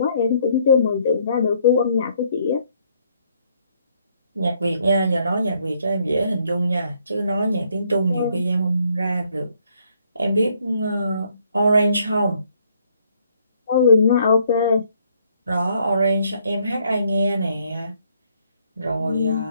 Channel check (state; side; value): inverted; both; correlation -0.69